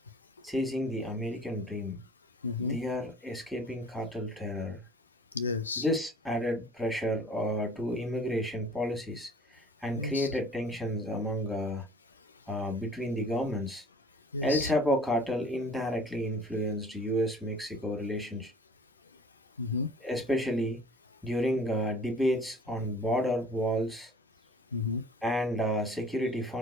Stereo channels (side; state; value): both; normal; correlation 0.49